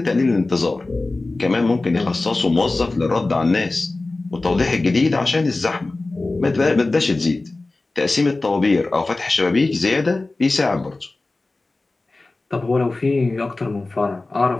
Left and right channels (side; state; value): right; quieter; 3.2 dB